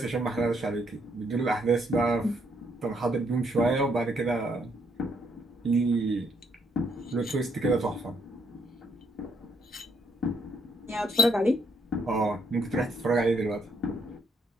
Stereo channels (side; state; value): both; normal; correlation 0.71